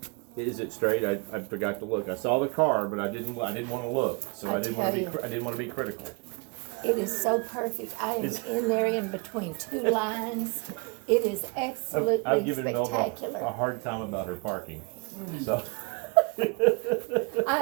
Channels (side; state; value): left; quieter; 31.0 dB